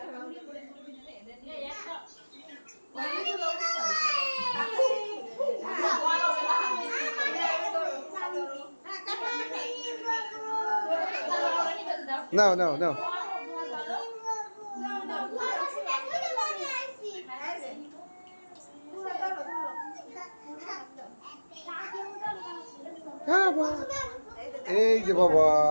নাও নাও নাও এই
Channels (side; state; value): both; inverted; correlation -1.00